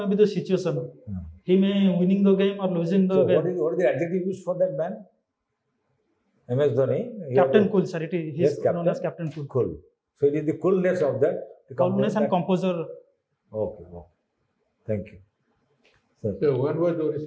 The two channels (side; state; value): both; identical; correlation 1.00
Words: be the situation, he may winning the game or losing the So, game. what is the adjective used for that man? MS Dhoni. Captain Cool, sir. It is Yes, known as Captain Cool. Cool. So it is the coolness of that. The Coolness and that- composure. Okay. Thank you. Sir. So when was